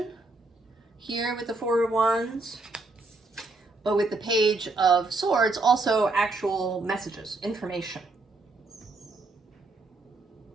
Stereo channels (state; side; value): quieter; left; 3.3 dB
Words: here with the Four of Wands, but with the Page of Swords also actual messages, information,